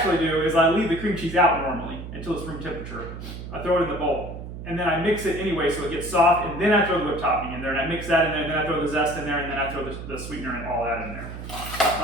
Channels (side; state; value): right; noise; hum, 10 dB below the sound